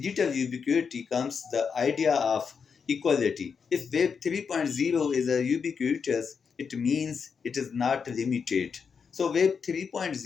ubiquity comes the idea of equality. If Web 3.0 is a ubiquitous, it means it is not limited. So Web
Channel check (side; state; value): right; quieter; 6.0 dB